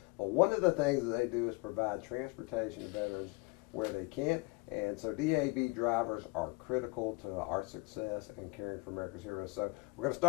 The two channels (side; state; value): right; quieter; 25.9 dB